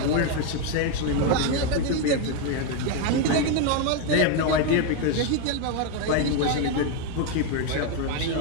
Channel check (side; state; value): both; different; correlation 0.01